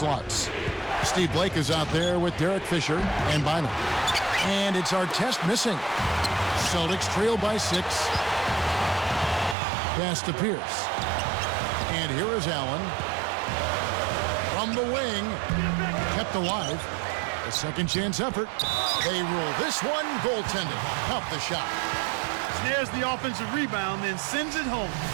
Steve Blake is out there with Derek Fisher and Bynum. And it's Artest missing. Celtics trail by 6. Pass to Pierce. And here is Allen. From the wing. Kept alive. A second chance effort. They rule this one goaltended. Off the shot. Snares the offensive rebound, then sends it home.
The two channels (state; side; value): drops out; left; at 9.6 s